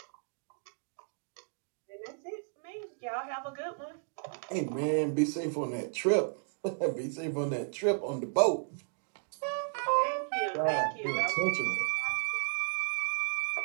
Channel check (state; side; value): silent; left; digital silence